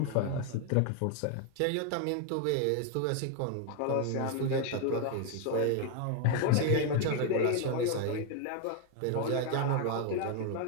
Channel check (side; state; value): both; different; correlation 0.01